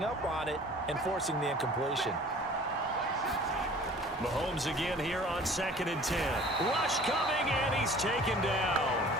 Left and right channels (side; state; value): both; normal; correlation 0.48